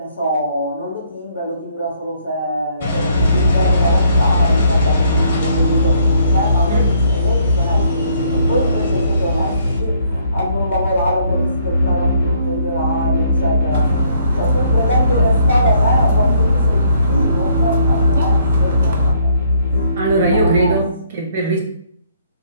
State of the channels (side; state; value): both; inverted; correlation -0.67